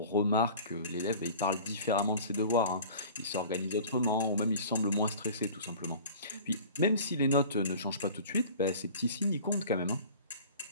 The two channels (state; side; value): inverted; both; correlation -0.43